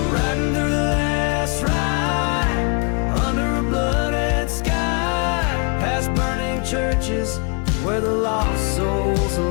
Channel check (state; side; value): quieter; right; 34.8 dB